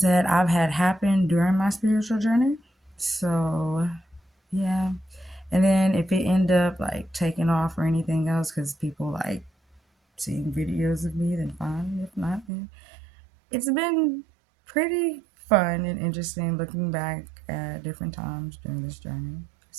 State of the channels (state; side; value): drops out; left; at 12.5 s